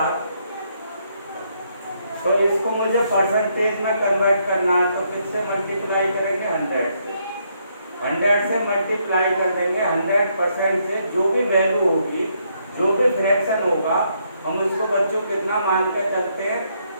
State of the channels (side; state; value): both; inverted; correlation -0.74